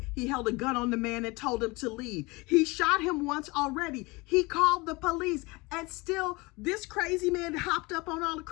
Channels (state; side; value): quieter; right; 24.6 dB